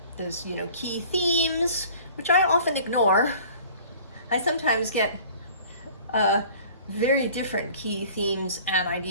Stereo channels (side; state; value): both; inverted; correlation -0.48